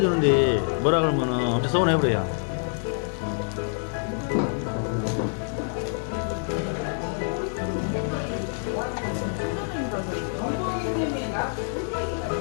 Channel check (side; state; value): right; silent; 55 dB below the other